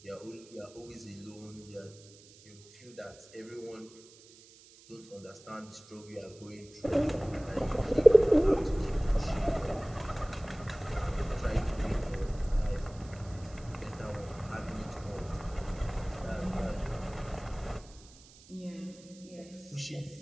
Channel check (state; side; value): noise; right; hiss, 23 dB below the sound